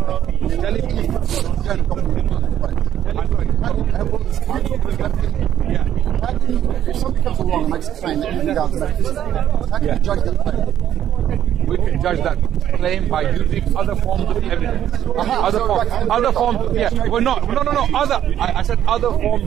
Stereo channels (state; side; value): quieter; left; 10.8 dB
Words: If somebody comes along and makes a claim that you regard as atheist, how can you judge that claim? We can judge that claim by using other forms of evidence. Other forms. Yeah. Well, no. I said other forms